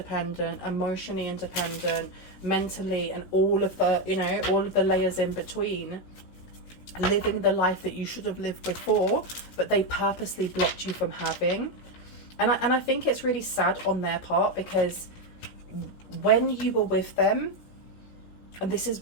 emotionally independent, mentally, and all of the, you know, all of the layers in between, living the life that you should have lived before, but they purposely blocked you from having. And I think it's really sad on their part, because when you were with them, and this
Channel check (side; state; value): right; late; 17 ms